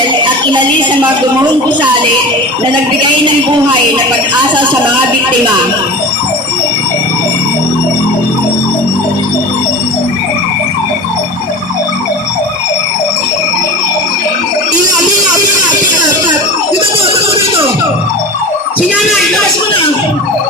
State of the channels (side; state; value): both; normal; correlation 0.32